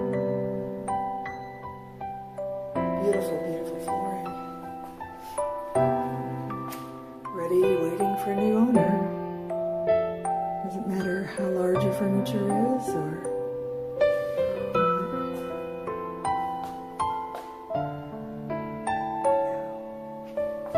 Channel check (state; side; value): identical; both; correlation 1.00